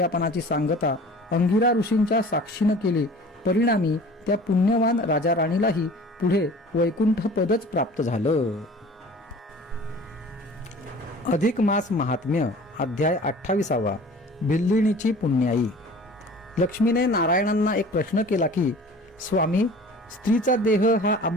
सांगता अंगिरा ऋषींच्या साक्षीनं केली. परिणामी त्या पुण्यवान राजा राणीलाही पुढे वैकुंठ पदच प्राप्त झालं. अधिक मास महात्म्य, अध्याय 28. भिल्लिणीची पुण्याई. लक्ष्मीने नारायणांना एक प्रश्न केला की, स्वामी, स्त्रीचा देह हा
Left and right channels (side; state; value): both; normal; correlation 0.44